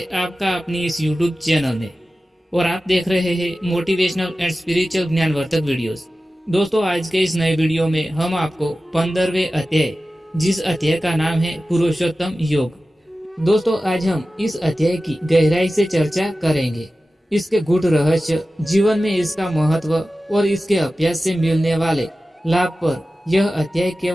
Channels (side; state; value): both; normal; correlation 0.95